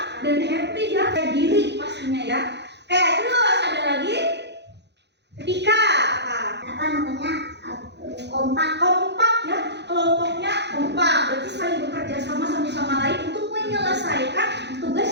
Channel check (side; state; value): left; late; 0.50 ms